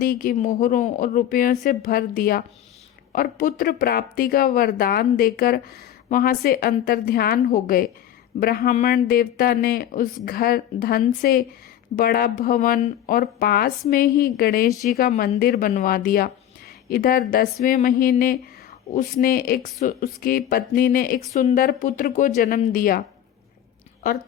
की मोहरों और रुपयों से भर दिया और पुत्र प्राप्ति का वरदान देकर वहां से अंतर्ध्यान हो गए। ब्राह्मण देवता ने उस घर धन से बड़ा भवन और पास में ही गणेश जी का मंदिर बनवा दिया। इधर 10वें महीने उसकी पत्नी ने एक सुंदर पुत्र को जन्म दिया और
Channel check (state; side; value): quieter; right; 11.0 dB